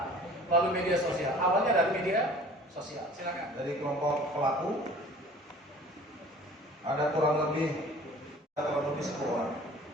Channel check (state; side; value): normal; both; correlation 0.47